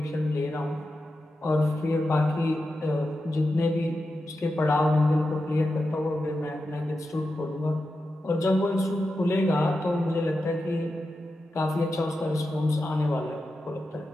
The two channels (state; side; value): normal; both; correlation 0.90